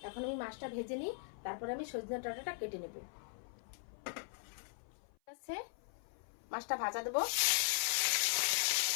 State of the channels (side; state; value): right; silent; 51 dB below the other